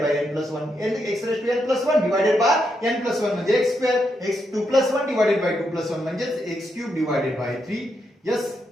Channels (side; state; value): both; normal; correlation 0.81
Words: by N plus 1, X raise to N plus 1 divided by N plus 1 म्हणजे X square, X 2 plus 1 divided by 2 plus 1 म्हणजे X cube divided by 3. Yes,